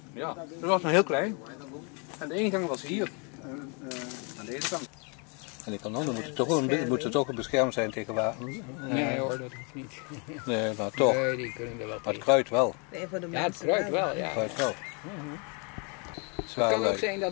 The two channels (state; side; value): quieter; right; 34.8 dB